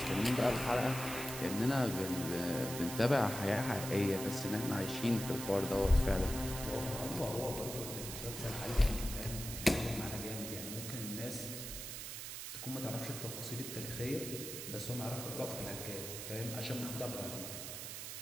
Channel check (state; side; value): noise; right; hiss, 7 dB below the sound